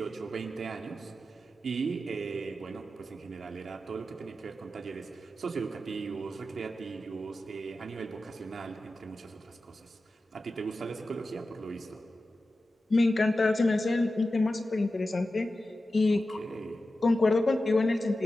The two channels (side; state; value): both; normal; correlation 0.93